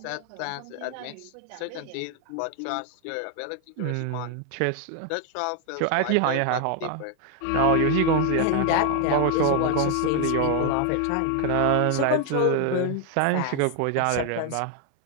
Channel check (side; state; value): both; different; correlation 0.00